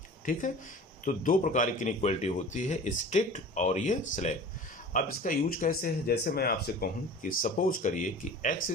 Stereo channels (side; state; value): both; normal; correlation 0.40